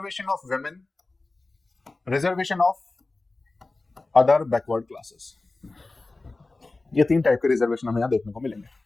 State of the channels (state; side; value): quieter; right; 3.3 dB